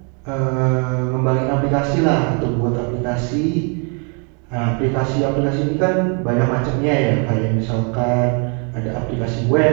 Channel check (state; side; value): quieter; left; 37.2 dB